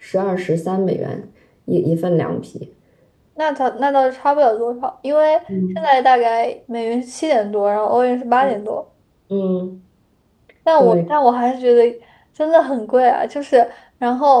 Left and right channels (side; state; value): both; identical; correlation 1.00